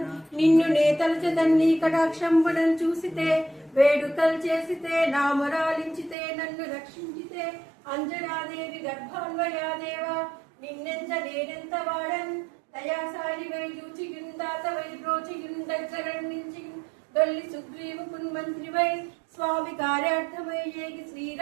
నిన్ను నే తలచెదన్ నీ కటాక్షంబునను చూసితే వేడుకలు చేసితే నామరాలించితే నన్ను రక్షించితే అంజనాదేవి గర్భాన్వయాదేవా నిన్నెంత నేనెంత వాడన్ దయాసారి వై దూచియుందాత వై బ్రోచియుందగ్గరణించి దొల్లి సుగ్రీవు కున్మంత్రి వై స్వామి కార్యార్థమై ఏగి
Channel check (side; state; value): left; drops out; at 6.2 s